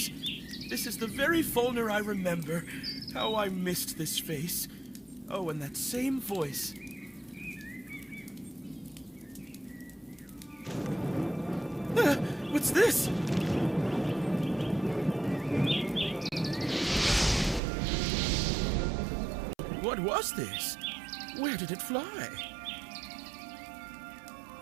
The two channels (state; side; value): drops out; left; at 17.6 s